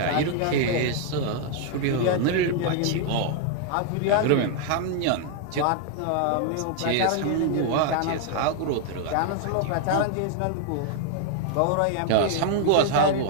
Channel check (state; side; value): different; both; correlation 0.00